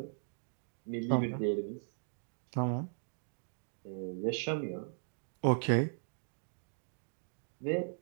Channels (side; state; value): left; silent; digital silence